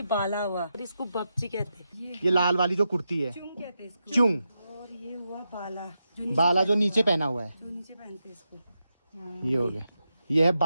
बाला हुआ, और इसको बपची कहते हैं। ये लाल वाली जो कुर्ती है, चुंग कहते हैं इसको। चुंग। और ये हुआ बाला जो नीचे पहना हुआ है, जो नीचे पहनते हैं इसको। ये हो गया। ये है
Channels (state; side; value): inverted; both; correlation -0.87